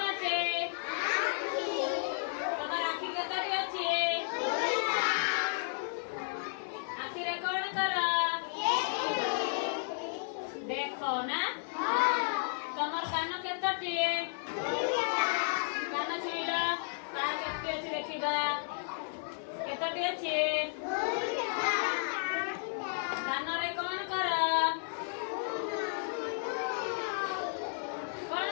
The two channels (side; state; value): right; silent; digital silence